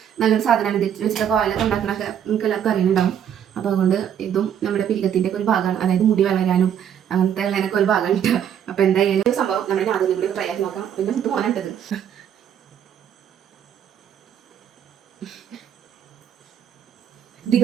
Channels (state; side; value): quieter; left; 9.2 dB